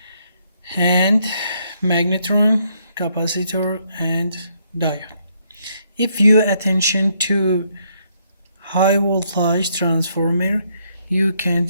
and magnetron, capacitor and diode. If you attention to high voltage transformer, you can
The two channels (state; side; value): inverted; both; correlation -0.72